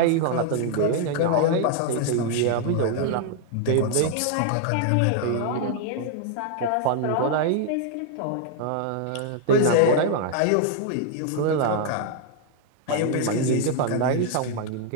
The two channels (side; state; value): both; different; correlation 0.00